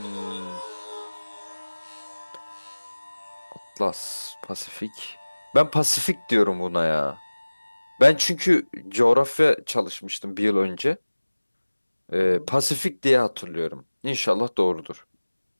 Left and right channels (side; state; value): both; inverted; correlation -1.00